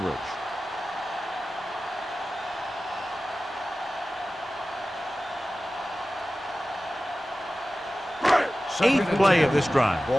8th play of this drive.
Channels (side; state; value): both; normal; correlation 0.95